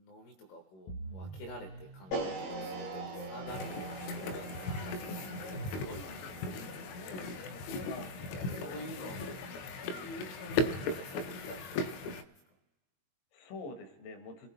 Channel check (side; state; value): right; late; 21 ms